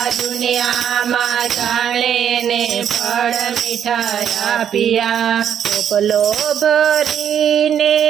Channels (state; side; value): quieter; left; 9.0 dB